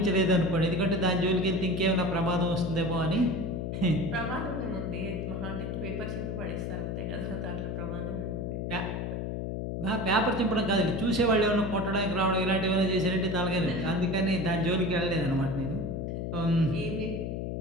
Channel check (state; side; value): noise; left; hum, 3 dB below the sound